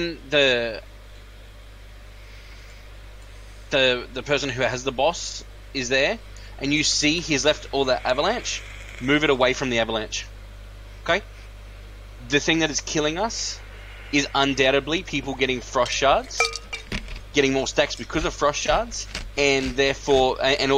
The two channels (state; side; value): identical; both; correlation 1.00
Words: the person who has the boss is there, and you see he's left all the avalanche, move it away from the avalanche. Okay? The thing that is killing us is undoubtedly people getting frost shards, getting more stacks because of frost shards, and therefore, and